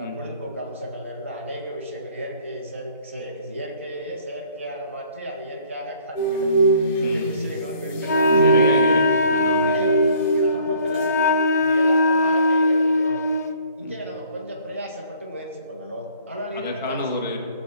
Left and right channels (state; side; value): inverted; both; correlation -0.57